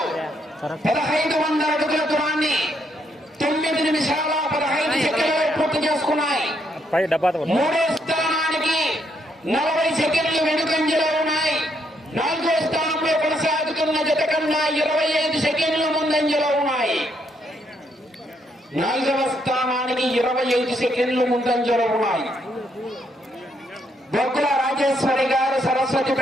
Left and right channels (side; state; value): both; normal; correlation 0.74